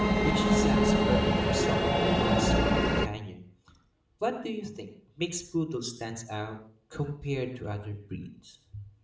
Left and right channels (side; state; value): both; identical; correlation 1.00